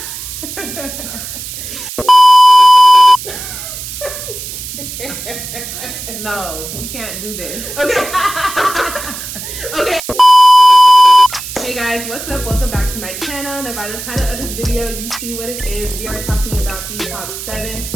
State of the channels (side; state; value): right; noise; hiss, 10 dB below the sound